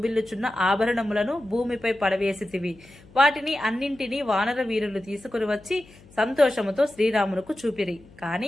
ఆభరణములను భూమిపై పడవేసితివి. వాటిని అన్నింటినీ వానర వీరులు తీసుకుని వచ్చి సంతోషముతో శ్రీరామునకు చూపిరి.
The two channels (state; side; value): noise; left; hum, 24 dB below the sound